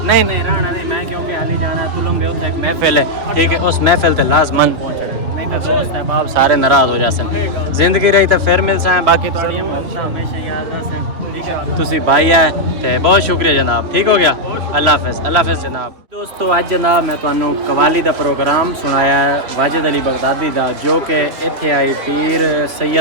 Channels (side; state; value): left; late; 3.0 ms